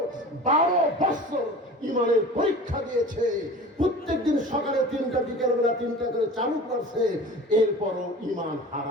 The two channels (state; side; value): normal; both; correlation 0.39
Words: 12 বছর ঈমানের পরীক্ষা দিয়েছে। প্রত্যেকদিন সকালে 3টা, বিকেল বেলা 3টা করে চালু করছে, এরপরও ঈমান